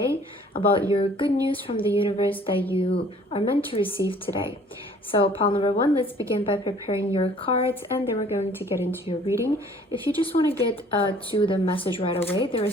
about your good news from the universe that you are meant to receive today. So pile number 1, let's begin by preparing your cards, and then we're going to get into your reading. If you just want to get to the message right away, there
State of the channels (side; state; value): both; normal; correlation 0.54